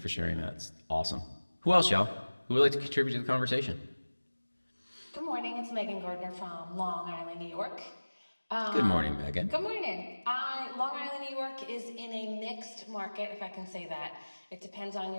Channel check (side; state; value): both; inverted; correlation -1.00